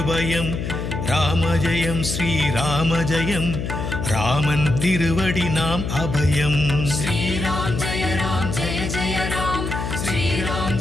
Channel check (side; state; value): left; noise; hum, 4 dB below the sound